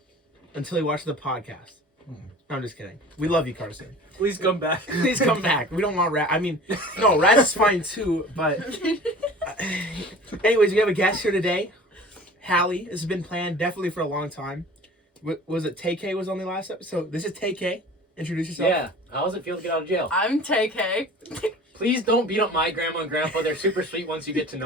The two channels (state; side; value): normal; both; correlation 0.42